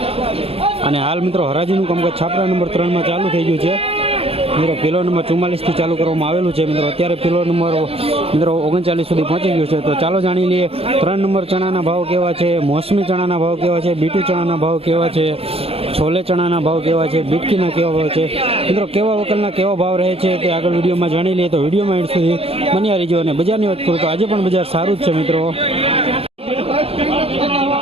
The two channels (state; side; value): late; left; 0.28 ms